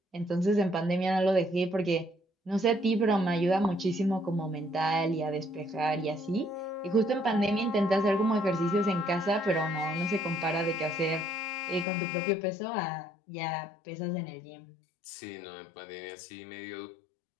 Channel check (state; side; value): drops out; right; at 11.9 s